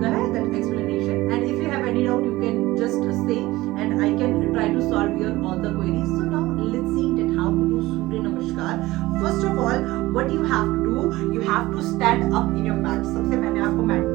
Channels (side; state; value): left; quieter; 18.5 dB